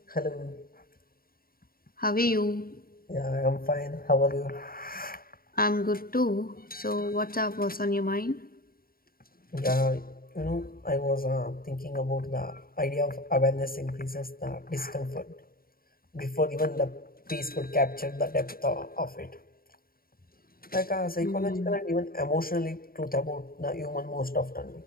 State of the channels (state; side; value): late; right; 0.43 ms